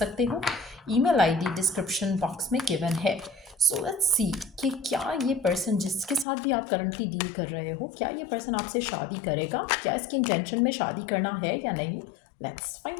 हो। ईमेल आईडी डिस्क्रिप्शन बॉक्स में गिवन है। सो लेट्स सी कि क्या ये पर्सन जिसके साथ भी आप करंटली डील कर रहे हो, क्या ये पर्सन आपसे शादी करेगा, क्या इसकी इंटेंशन में शादी करना है या नहीं। Let's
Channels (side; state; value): right; drops out; at 6.2 s